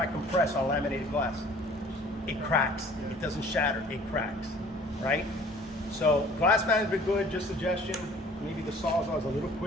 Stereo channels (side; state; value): both; normal; correlation 0.52